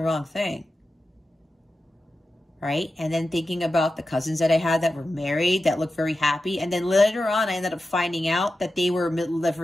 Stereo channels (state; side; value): normal; both; correlation 0.92